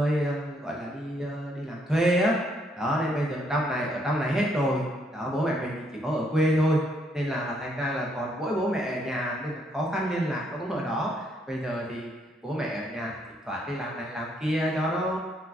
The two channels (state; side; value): normal; both; correlation 0.71